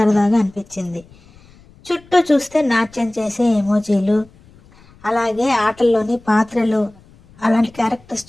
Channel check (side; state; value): left; noise; rumble, 27 dB below the sound